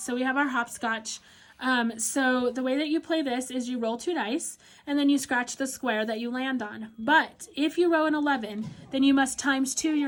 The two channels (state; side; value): identical; both; correlation 1.00